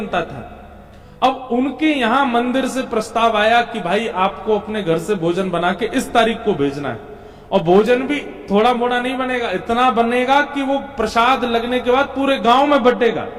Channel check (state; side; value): identical; both; correlation 1.00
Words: था। अब उनके यहां मंदिर से प्रस्ताव आया कि भाई आपको अपने घर से भोजन बना के इस तारीख को भेजना है, और भोजन भी थोड़ा मोड़ा नहीं बनेगा, इतना बनेगा कि वो प्रसाद लगने के बाद पूरे गांव में बटेगा।